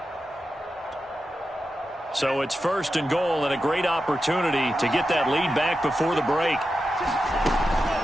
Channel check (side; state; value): both; normal; correlation 0.90